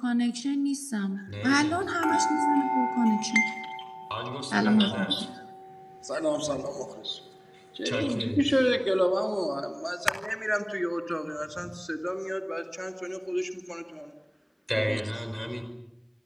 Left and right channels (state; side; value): identical; both; correlation 1.00